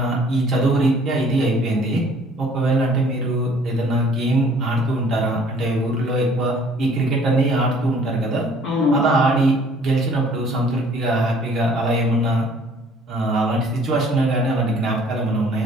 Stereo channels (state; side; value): normal; both; correlation 0.56